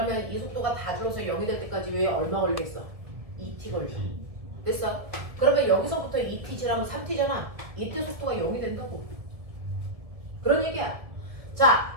이 속도가 다 줄어서 0이 될 때까지 왜 얼마 걸리겠어? 2t 걸려. 됐어? 그러면 여기서부터 2t 지나면 3t잖아. 이때 속도가 0이 된다고. 그런 얘기야.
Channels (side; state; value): left; late; 1.7 ms